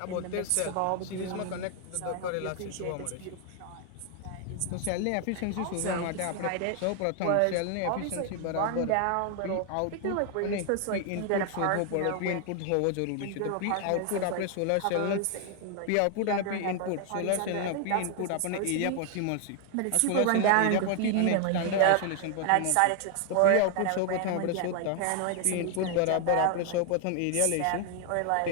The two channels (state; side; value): different; both; correlation 0.00